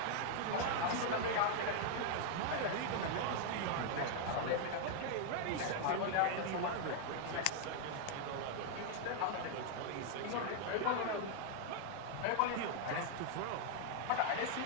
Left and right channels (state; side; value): different; both; correlation 0.00